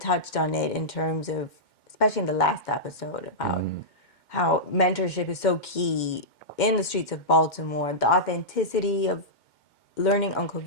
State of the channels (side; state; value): right; late; 2.1 ms